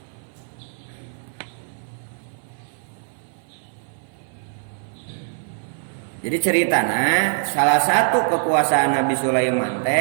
Jadi ceritana salah satu kekuasaan Nabi Sulaiman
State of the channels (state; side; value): silent; left; 57 dB below the other